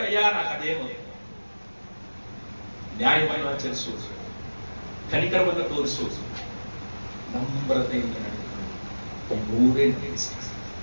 అయ్యా నాకు అదేమో. న్యాయమైన ఆచరిసు, కనికరమైన తోరిసు, నమ్రతైన ఈ మూడే ఇష్టం.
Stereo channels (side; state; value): both; inverted; correlation -1.00